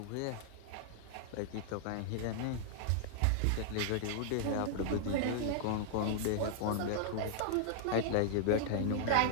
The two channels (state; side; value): different; both; correlation -0.01